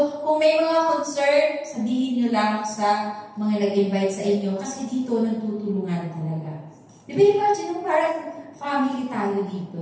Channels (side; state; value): both; identical; correlation 1.00